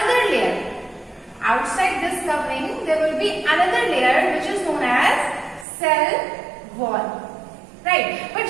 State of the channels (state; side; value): drops out; left; at 5.7 s